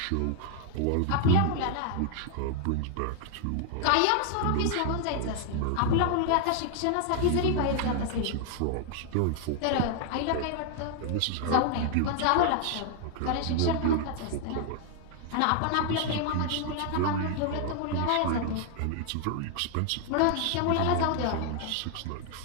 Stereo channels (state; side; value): different; both; correlation 0.00